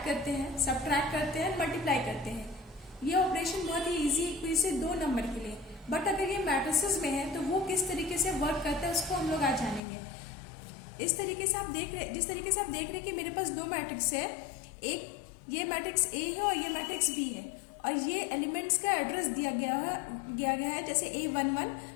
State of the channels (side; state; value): right; drops out; at 9.8 s